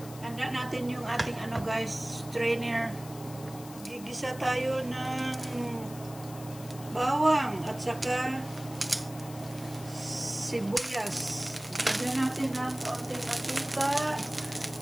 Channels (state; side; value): noise; left; hiss, 17 dB below the sound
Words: Handa natin yung ating guys, strainer. Gigisa tayo ng bawang at saka sibuyas. Lagyan natin ng kaunting mantika.